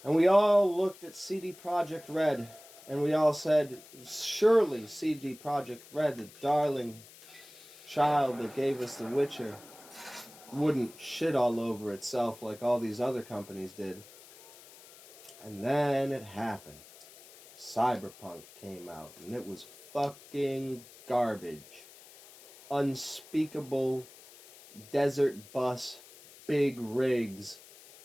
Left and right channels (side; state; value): left; noise; hiss, 21 dB below the sound